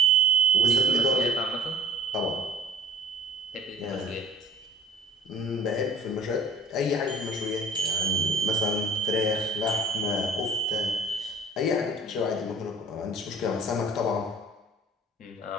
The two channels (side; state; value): both; normal; correlation 0.45